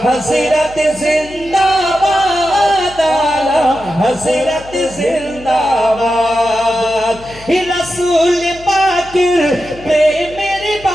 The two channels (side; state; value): left; noise; hum, 19 dB below the sound